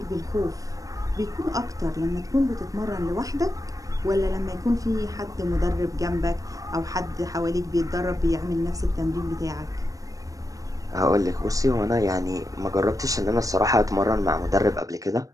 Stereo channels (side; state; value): left; late; 0.16 ms